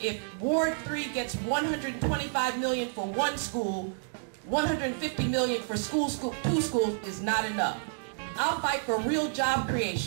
Ward 3 gets $125 million for one school, $150 million for two schools is not enough. I'll fight for real job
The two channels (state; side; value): silent; left; digital silence